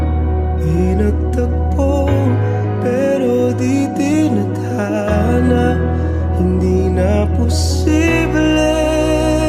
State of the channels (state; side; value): identical; both; correlation 1.00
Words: inagtagpo, pero di tinadhana. Hindi na posible